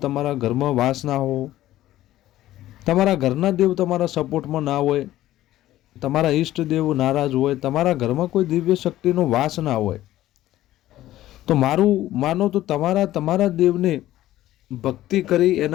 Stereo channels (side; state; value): right; quieter; 14.5 dB